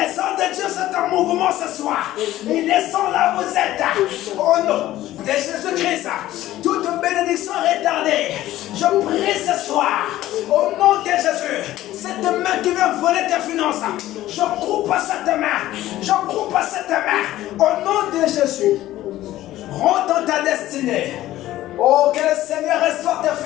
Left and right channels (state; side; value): quieter; right; 14.8 dB